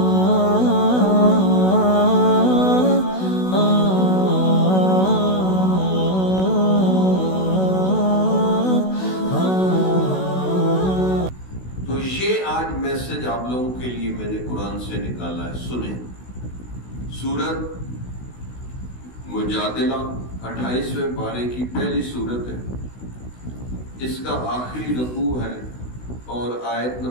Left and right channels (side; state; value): right; late; 16 ms